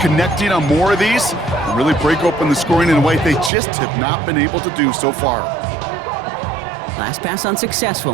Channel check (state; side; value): drops out; left; at 3.5 s